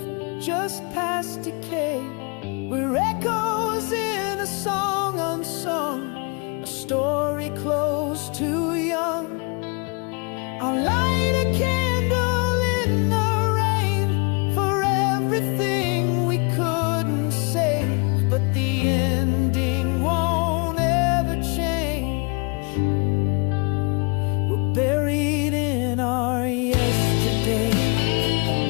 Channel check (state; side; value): quieter; right; 33.0 dB